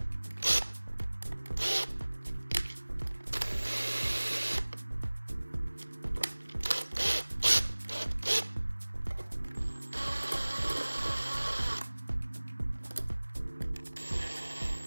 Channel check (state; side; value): inverted; both; correlation -1.00